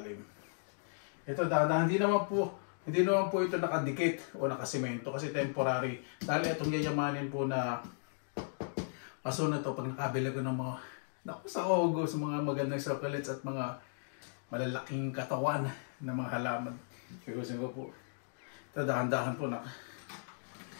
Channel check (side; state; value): right; silent; digital silence